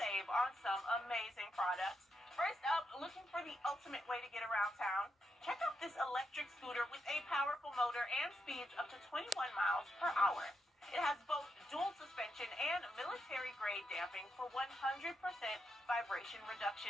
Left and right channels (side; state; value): both; normal; correlation 0.83